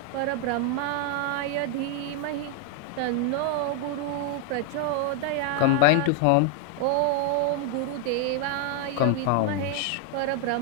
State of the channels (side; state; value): both; different; correlation 0.00